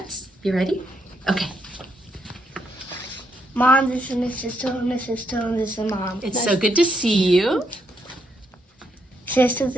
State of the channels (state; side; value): normal; both; correlation 0.77